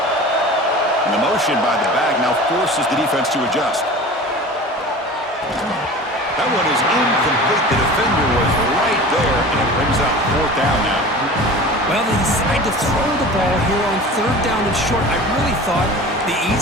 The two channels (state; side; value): normal; both; correlation 0.38